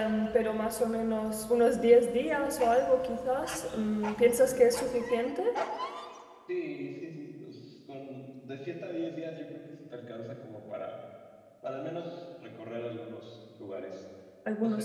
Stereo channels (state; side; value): identical; both; correlation 1.00